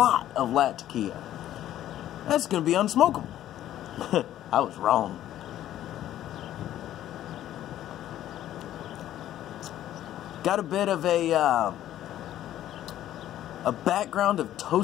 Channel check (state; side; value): quieter; right; 12.5 dB